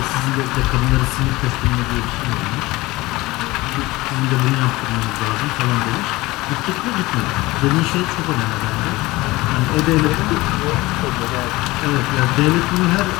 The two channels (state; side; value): quieter; right; 20.2 dB